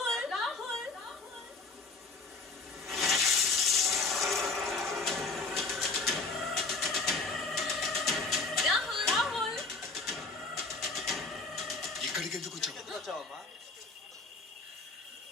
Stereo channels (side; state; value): right; quieter; 3.7 dB